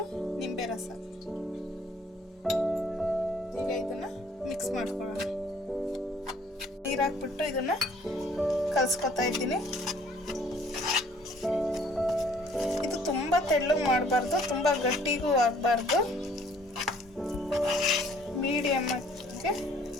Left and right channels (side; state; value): both; normal; correlation 0.58